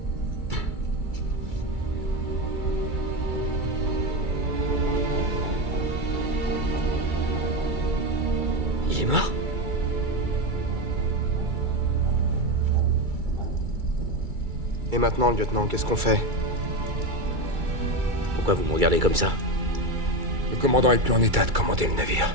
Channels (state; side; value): late; left; 2.3 ms